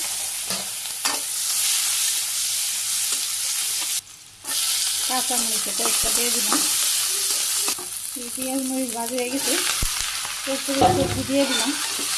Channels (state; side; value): identical; both; correlation 1.00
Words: কাঁচা মরিচের কয়েকটা দিয়ে দিলাম। পেঁয়াজ মরিচ ভাজি হয়ে গেছে, সবজি দিয়ে দিলাম,